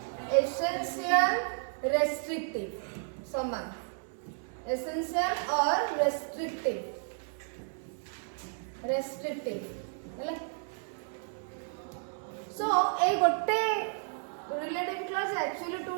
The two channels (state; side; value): silent; left; digital silence